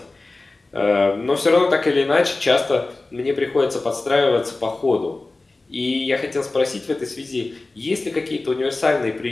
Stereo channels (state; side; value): quieter; right; 3.2 dB